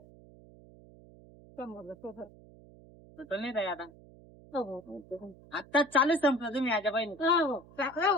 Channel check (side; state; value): right; noise; hum, 22 dB below the sound